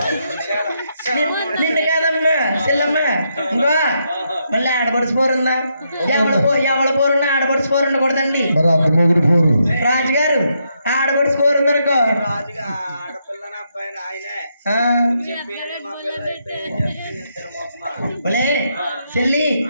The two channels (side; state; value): both; inverted; correlation -0.79